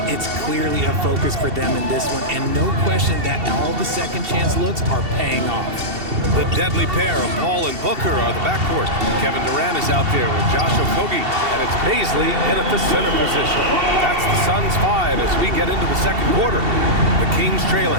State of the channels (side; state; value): left; late; 2.7 ms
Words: it's clearly a focus for them in this one, and no question that all the second chance looks are paying off. The deadly pair of Paul and Booker are the backcourt. Kevin Durant is out there with Josh Okogie, and it's Baisley in at the center position. That's the Suns 5 as we get into the second quarter. The Kings